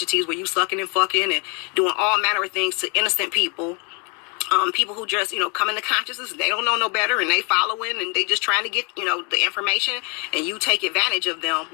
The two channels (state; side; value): quieter; right; 33.8 dB